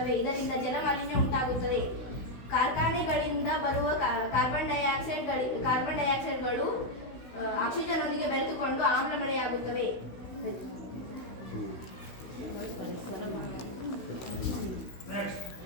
ಇದರಿಂದ ಜಲಮಾಲಿನ್ಯ ಉಂಟಾಗುತ್ತದೆ. ಕಾರ್ಖಾನೆಗಳಿಂದ ಬರುವ ಕಾರ್ಬನ್ ಡೈಆಕ್ಸೈಡ್ಗಳು ಆಕ್ಸಿಜನ್ನೊಂದಿಗೆ ಬೆರೆತುಕೊಂಡು ಆಮ್ಲ ಮಳೆಯಾಗುತ್ತವೆ.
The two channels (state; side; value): late; right; 16 ms